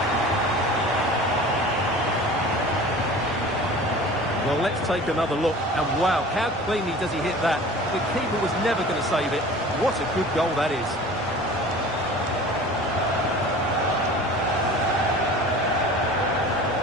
Well, let's take another look. And wow, how cleanly does he hit that? The keeper was never going to save it. What a good goal that is.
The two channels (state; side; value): normal; both; correlation 0.41